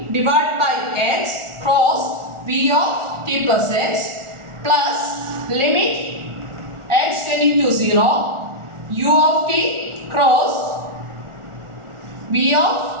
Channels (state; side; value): late; left; 1.4 ms